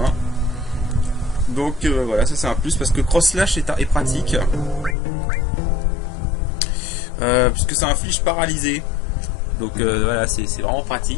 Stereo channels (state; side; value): drops out; right; at 5.0 s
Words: Donc voilà, ça c'est un plus parce que Cross Slash est pratique. Puisque ça inflige paralysé. Donc voilà, c'est vraiment